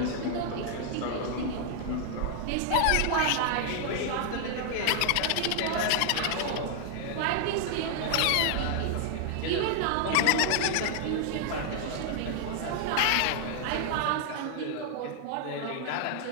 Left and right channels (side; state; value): both; different; correlation 0.00